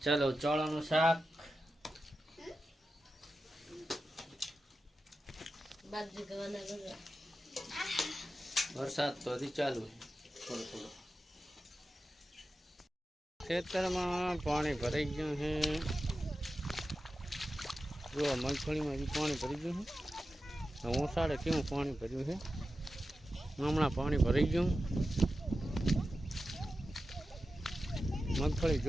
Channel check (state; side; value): normal; both; correlation 0.92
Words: ચલો ચોળાનું શાક વરસાદ તો હજી ચાલુ થોડો થોડો. ખેતરમાં પાણી ભરાઈ ગયું છે. જો મગફળીમાં હજી પાણી ભરી ગયું છે. ઓસાડે કેવું પાણી ભર્યું છે. હમણાં પાણી ભરાઈ ગયું. મગફળી